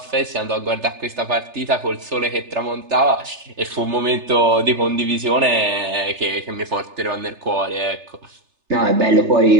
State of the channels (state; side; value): late; left; 3.3 ms